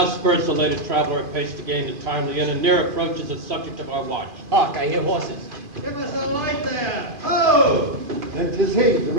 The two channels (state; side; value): late; left; 2.5 ms